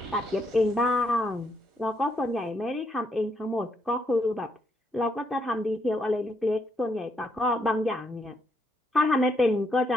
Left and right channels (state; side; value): normal; both; correlation 0.76